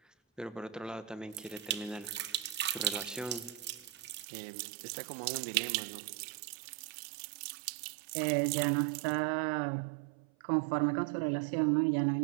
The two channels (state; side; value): drops out; left; at 4.2 s